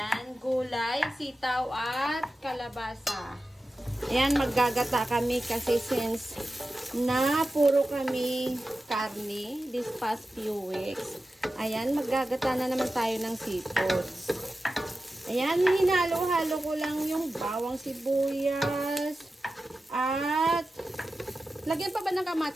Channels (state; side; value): normal; both; correlation 0.93